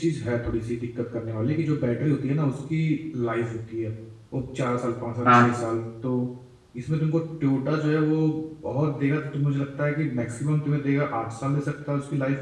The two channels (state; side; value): identical; both; correlation 1.00